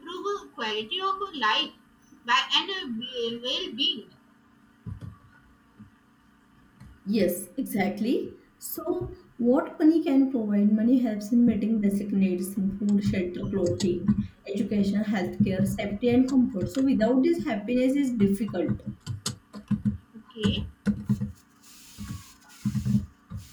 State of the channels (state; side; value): identical; both; correlation 1.00